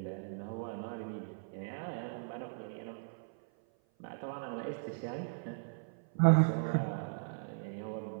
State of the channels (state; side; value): silent; left; 53 dB below the other